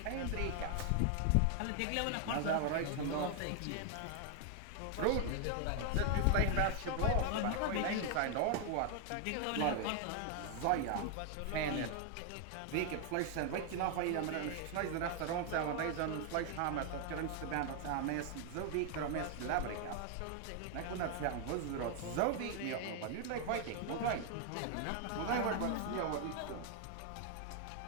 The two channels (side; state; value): both; different; correlation 0.00